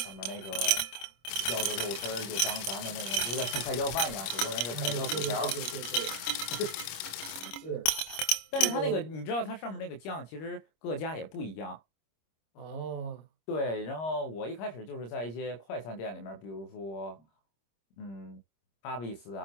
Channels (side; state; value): right; late; 26 ms